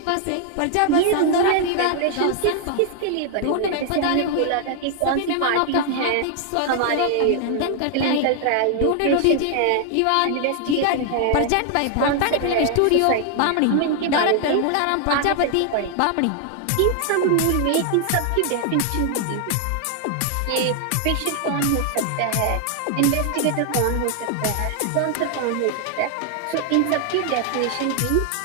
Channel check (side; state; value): both; different; correlation 0.00